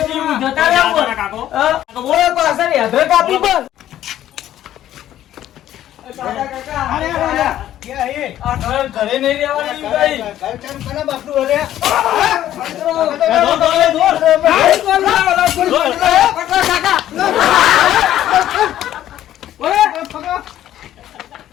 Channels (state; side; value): quieter; right; 12.3 dB